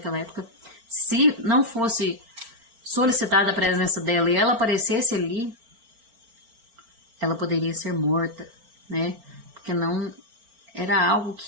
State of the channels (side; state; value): left; late; 4.4 ms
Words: época. Se não fosse solicitada a presença dela e ela aparecesse ali, ela poderia ser morta, né? Porque não era algo